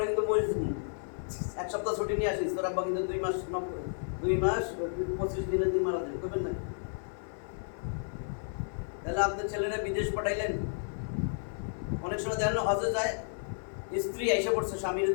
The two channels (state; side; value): silent; right; 56 dB below the other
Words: কিন্তু মরে যাবো, 1 সপ্তাহ ছুটি নিয়ে আসিস, তোর আব্বা কিন্তু 2 মাস 25 দিনে তুই মারা যাবে, করবেন না? তাহলে আপনার ছেলেরা বিদেশ পাঠাইলেন। অনেক সময় দেখেন হজে যায়, স্ত্রী এসে পড়ছে স্বামীর